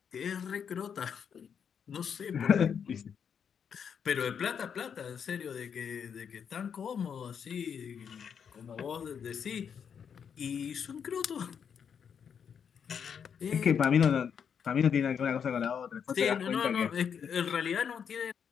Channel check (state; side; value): quieter; right; 7.4 dB